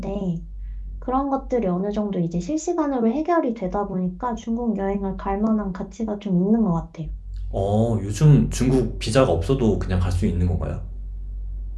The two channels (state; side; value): identical; both; correlation 1.00